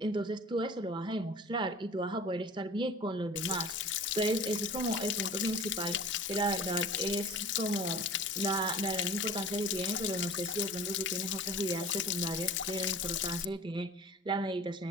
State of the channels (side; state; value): both; normal; correlation 0.41